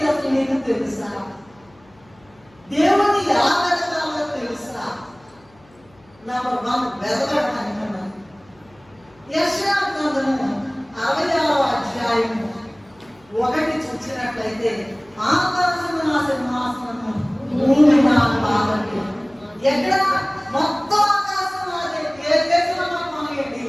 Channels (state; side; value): noise; left; hum, 30 dB below the sound